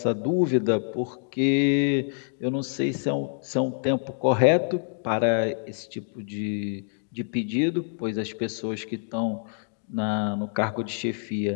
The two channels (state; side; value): silent; right; digital silence